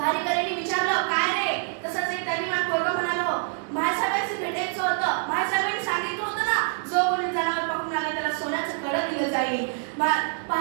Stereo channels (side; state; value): left; silent; 56 dB below the other